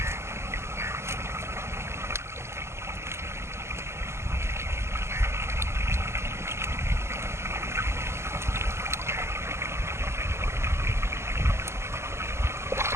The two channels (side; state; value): left; late; 0.13 ms